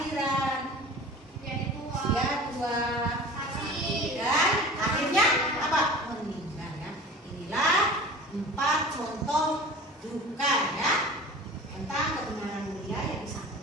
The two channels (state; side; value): normal; both; correlation 0.39